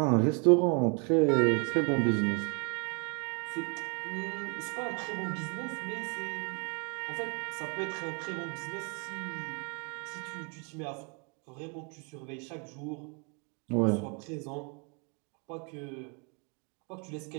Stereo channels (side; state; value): left; quieter; 35.0 dB